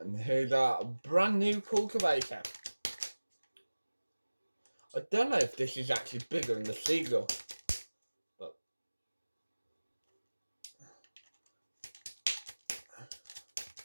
here's our brand new cultivator. I don't know if this is actually bigger than the Seagull, but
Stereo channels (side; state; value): both; inverted; correlation -1.00